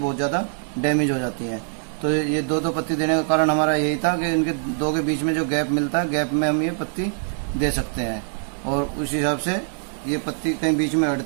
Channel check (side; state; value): left; silent; 63 dB below the other